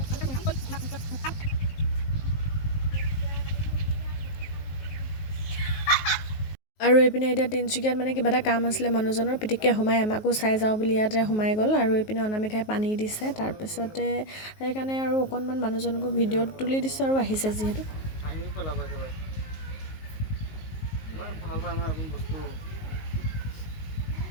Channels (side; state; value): right; late; 19 ms